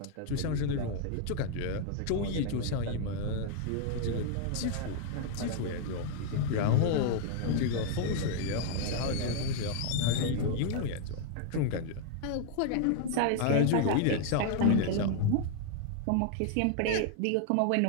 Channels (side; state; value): both; different; correlation 0.00